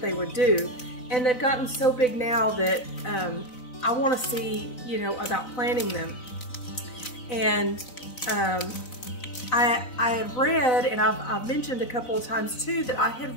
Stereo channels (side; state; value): right; late; 4.0 ms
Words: they would do. And they've gotten so big now that I want to see, about planting them. And I had read, and I've mentioned a couple of times too, that I